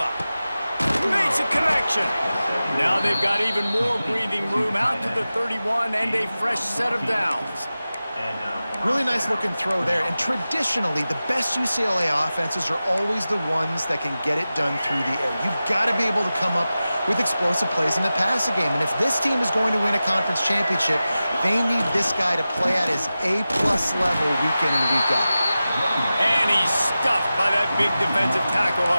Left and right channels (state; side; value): inverted; both; correlation -0.95